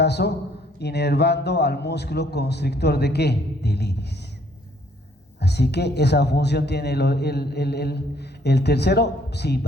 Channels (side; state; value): both; normal; correlation 0.64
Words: inervando al músculo constrictor de ¿qué? Del iris. Así Así que esa función tiene el tercero, sí